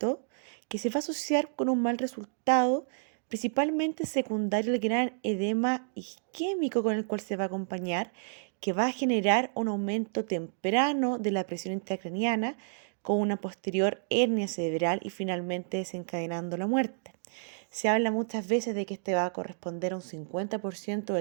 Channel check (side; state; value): left; silent; digital silence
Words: que se va a asociar con un mal resultado, principalmente secundario al gran edema isquémico con el cual se va a acompañar, que va a generar un aumento temprano de la presión intracraniana con una posterior hernia cerebral y finalmente desencadenando la muerte. Se habla muchas veces de que este va a corresponder a un 50%